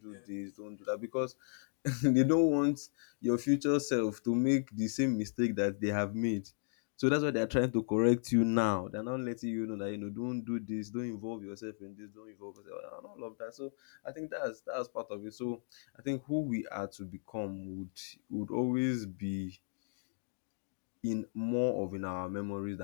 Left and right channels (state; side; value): silent; right; digital silence